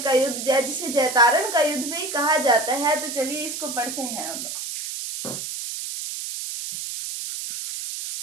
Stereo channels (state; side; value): noise; right; hiss, 6 dB below the sound